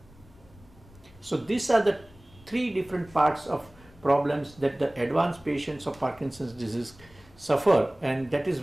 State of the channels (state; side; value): noise; left; rumble, 24 dB below the sound